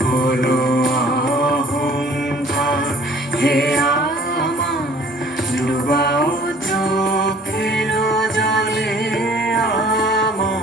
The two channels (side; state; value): both; normal; correlation 0.53